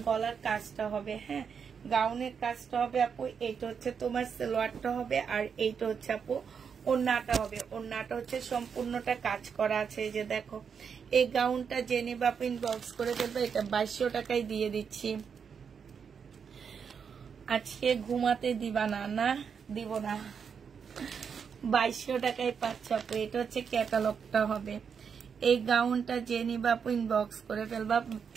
গলার কাজটা হবে, হ্যাঁ গাউনের কাজটা হবে আপু। এইটা হচ্ছে তোমার সালোয়ারটা হবে, আর এইটা হচ্ছে আপু ওড়নাটা হবে। ওড়নাটা হচ্ছে সম্পূর্ণটা কাজ করা আছে। এই যে দেখো এই গাউনটা জেনে বাপ ইনবক্স করে ফেলবে, এটা 2200 টাকায় দিয়ে দিচ্ছি। আজকে ঘুমাতে দিবা না? না দিব না, 2200 টাকায় পাচ্ছ আপু। এটা হচ্ছে ক্যাটালগটা হবে। এই গাউনটা জেনে বাপ ইনবক্স করে ফেলবা,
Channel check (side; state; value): left; quieter; 6.6 dB